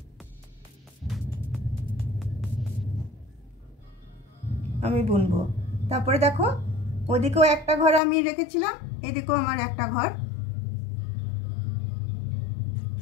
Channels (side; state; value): right; drops out; at 8.0 s